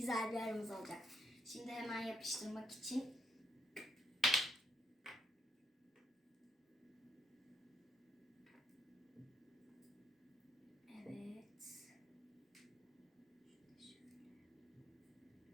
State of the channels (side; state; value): both; normal; correlation 0.76